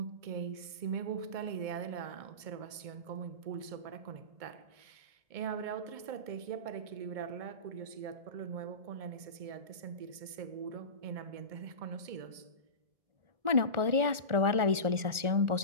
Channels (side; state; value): left; late; 1.4 ms